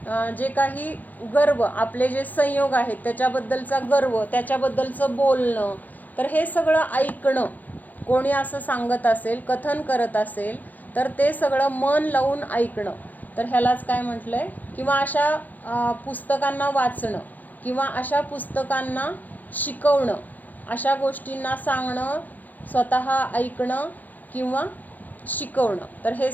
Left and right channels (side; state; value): right; late; 0.082 ms